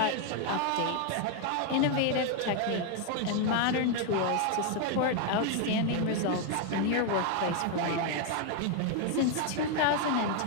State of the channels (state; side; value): different; both; correlation 0.01